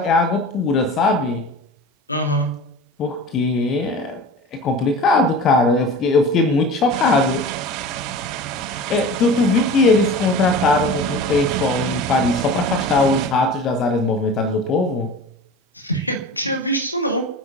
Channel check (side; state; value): both; normal; correlation 0.36